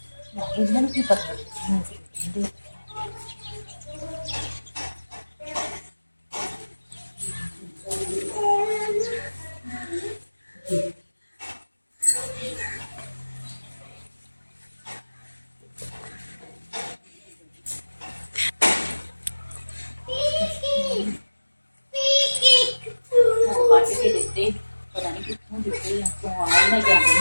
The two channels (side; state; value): both; inverted; correlation -1.00